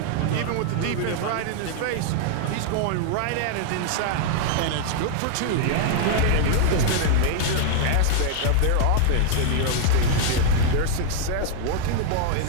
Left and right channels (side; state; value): both; different; correlation 0.00